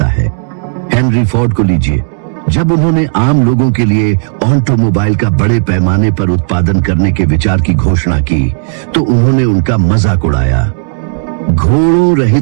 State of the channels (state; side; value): silent; left; digital silence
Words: है। हेनरी फोर्ड को लीजिए। जब उन्होंने आम लोगों के लिए ऑटोमोबाइल का बड़े पैमाने पर उत्पादन करने के विचार की घोषणा की तो उन्होंने उनका मजाक उड़ाया। घोड़ों